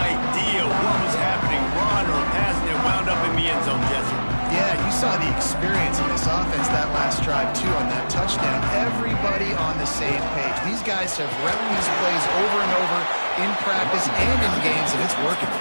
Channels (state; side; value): inverted; both; correlation -1.00